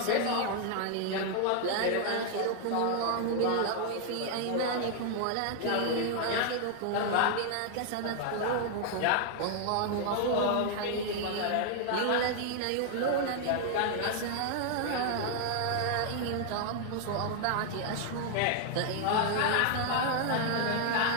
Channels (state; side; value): different; both; correlation 0.00